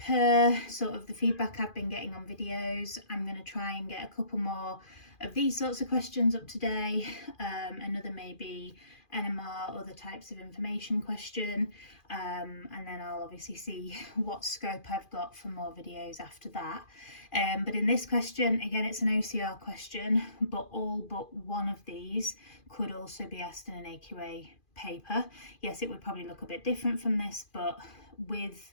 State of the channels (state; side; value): late; right; 2.4 ms